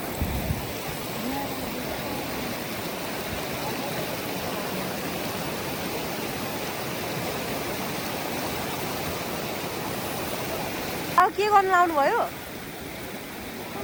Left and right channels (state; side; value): identical; both; correlation 1.00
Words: अब के गर्नु लाउनु भयो?